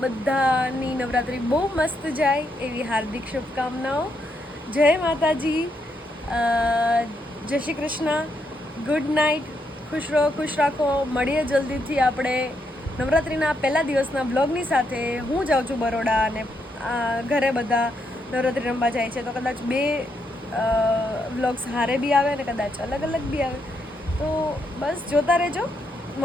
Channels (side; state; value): both; normal; correlation 0.78